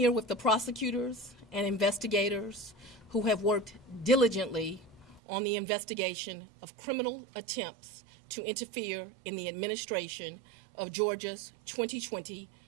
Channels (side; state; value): left; drops out; at 5.2 s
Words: with the prosecutors and investigators who have worked diligently on the investigation of criminal attempts to interfere in the administration of Georgia's 2020